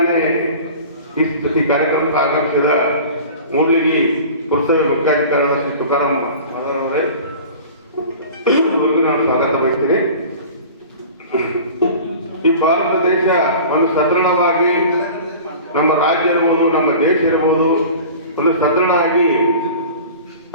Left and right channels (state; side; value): inverted; both; correlation -0.40